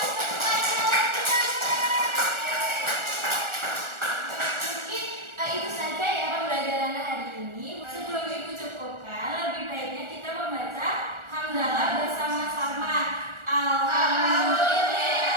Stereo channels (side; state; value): left; late; 1.4 ms